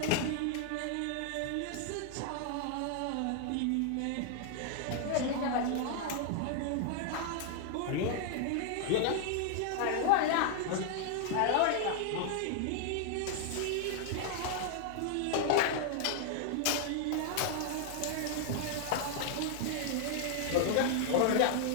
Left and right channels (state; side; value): different; both; correlation 0.00